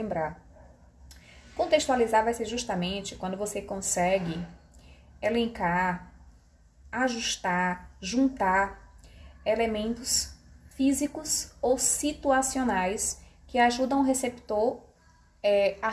Contextualizar vai ser justamente quando você consegue elencar, ajustar, juntar elementos físicos ou situacionais que ajudam o receptor a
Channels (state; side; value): identical; both; correlation 1.00